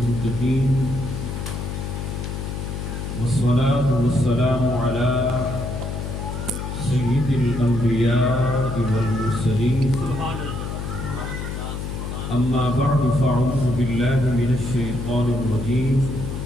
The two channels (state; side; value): noise; left; hum, 5 dB below the sound